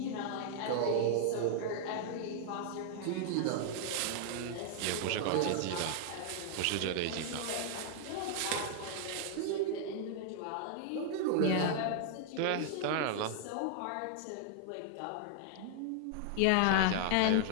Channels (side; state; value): both; different; correlation 0.00